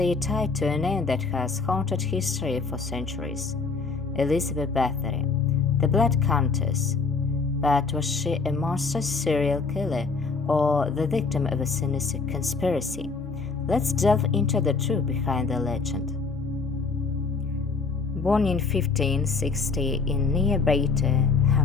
tied to a name that has haunted history for centuries. Elizabeth Bathory, the Blood Countess. But was she a monstrous serial killer or the victim of a sinister conspiracy? Let's delve into the truth behind the legend. Born in 1560 in nearby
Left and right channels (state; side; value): quieter; right; 4.6 dB